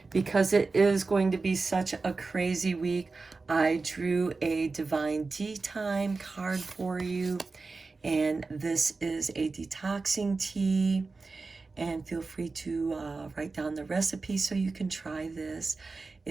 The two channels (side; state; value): left; quieter; 3.9 dB